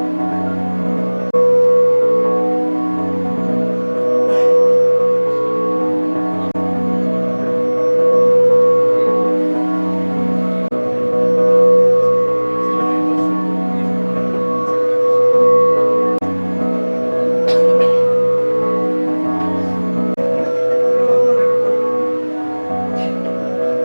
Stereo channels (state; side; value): inverted; both; correlation -1.00